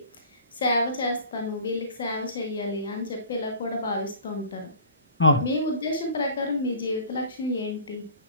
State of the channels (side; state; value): both; inverted; correlation -0.44